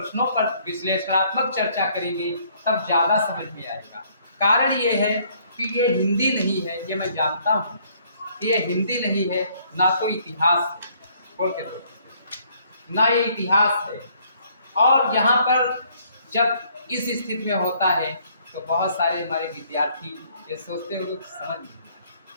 पर विश्लेषणात्मक चर्चा करेंगे, तब ज़्यादा समझ में आएगा। कारण ये है कि ये हिंदी नहीं है, ये मैं जानता हूँ, ये हिंदी नहीं है, ना तो इतिहास है, बोल के दो, ना ये इतिहास है। और यहाँ पर जब इस स्थिति में होता है तो बहुत सारे हमारे विद्यार्थी ये सोचते हैं लोग समझ नहीं,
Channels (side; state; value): both; inverted; correlation -0.64